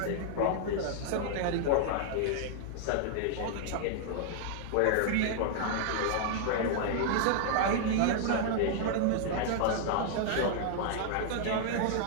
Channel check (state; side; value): different; both; correlation -0.01